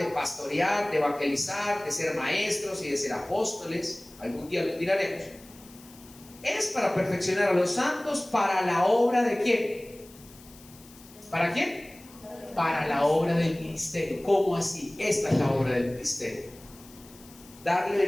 pastorear, de evangelizar, de ser maestros y de ser apóstoles, algún día los miraremos, es para perfeccionar a los santos para la obra de ¿quién? ¿Para quién? Para la obra del ministerio. ¿Cómo así? Esta es la obra del ministerio: darle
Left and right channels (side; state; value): left; noise; hiss, 22 dB below the sound